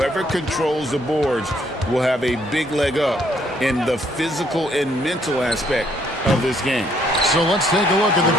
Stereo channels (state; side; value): normal; both; correlation 0.68